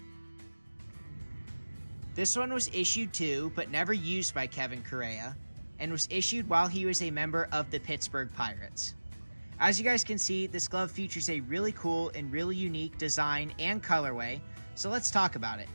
This one was issued to, but never used by Kevin Correia, and was issued while he was a member of the Pittsburgh Pirates. As you guys can see, this glove features a really cool and really unique design and colorway, so let's talk about it.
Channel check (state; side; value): inverted; both; correlation -1.00